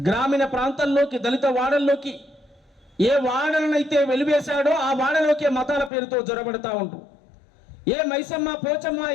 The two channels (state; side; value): drops out; right; at 5.9 s